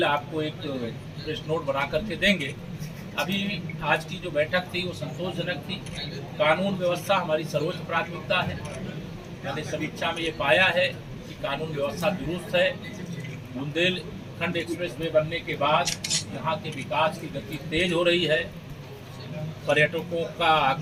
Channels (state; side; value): identical; both; correlation 1.00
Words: आपको एक प्रेस नोट बना करके देंगे। अभी आज की जो बैठक थी वो संतोषजनक थी। कानून व्यवस्था हमारी सर्वोच्च प्राथमिकता है। मैंने समीक्षा में ये पाया है कि कानून व्यवस्था दुरुस्त है। बुंदेलखंड एक्सप्रेस वे बनने के बाद यहाँ के विकास की गति तेज हो रही है, पर्यटकों का